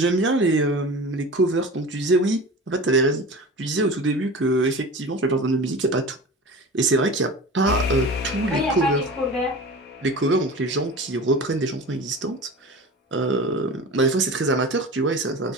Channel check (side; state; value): both; normal; correlation 0.34